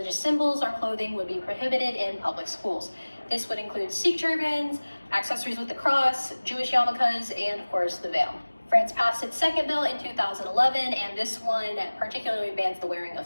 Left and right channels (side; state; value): both; inverted; correlation -1.00